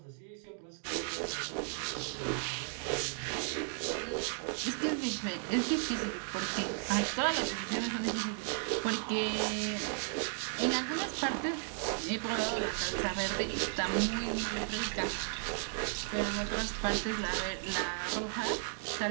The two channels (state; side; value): silent; left; 55 dB below the other